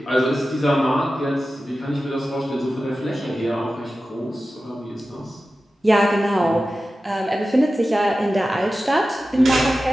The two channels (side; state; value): both; normal; correlation 0.94